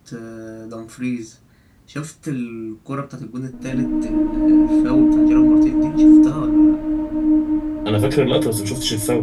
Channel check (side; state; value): both; identical; correlation 1.00